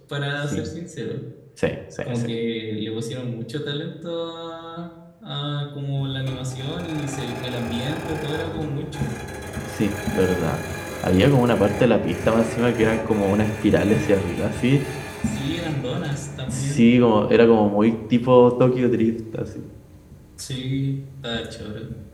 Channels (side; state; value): both; identical; correlation 1.00